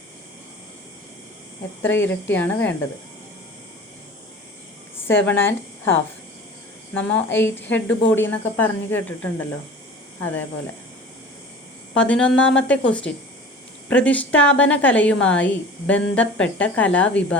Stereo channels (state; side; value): normal; both; correlation 0.40